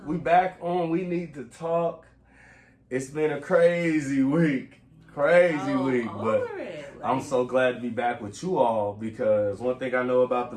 We back on We Need to Talk. It's been a crazy week. But I'm so glad to be back with you all because one thing I know about the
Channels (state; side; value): identical; both; correlation 1.00